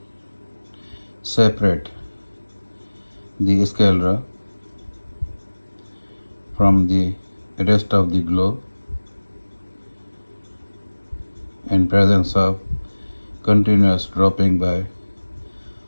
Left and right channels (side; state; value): both; inverted; correlation -1.00